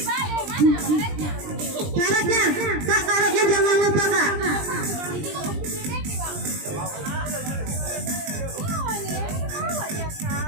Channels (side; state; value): left; late; 20 ms